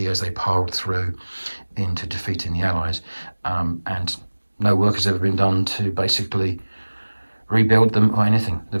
as they piled through into defeating the Allies, and no work has ever been done to basically rebuild them or anything. The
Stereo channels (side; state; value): both; inverted; correlation -1.00